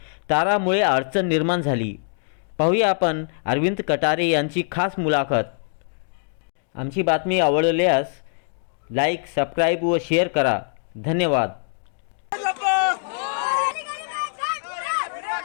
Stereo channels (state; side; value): silent; right; 63 dB below the other